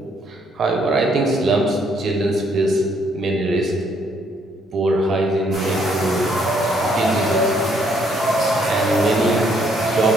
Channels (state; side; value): normal; both; correlation 0.68